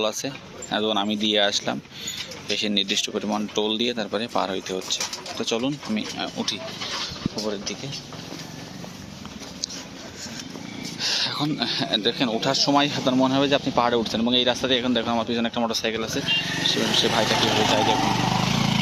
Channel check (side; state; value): both; identical; correlation 1.00